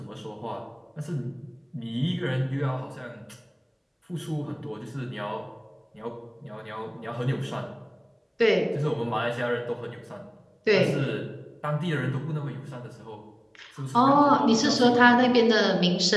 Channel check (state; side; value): identical; both; correlation 1.00